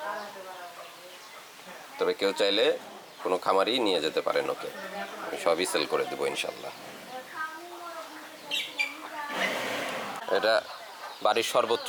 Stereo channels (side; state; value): both; identical; correlation 1.00